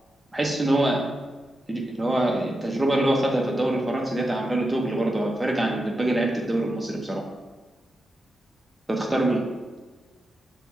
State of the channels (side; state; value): both; normal; correlation 0.88